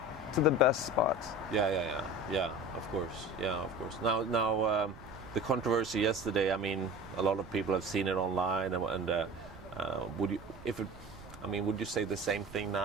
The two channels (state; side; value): noise; right; rumble, 18 dB below the sound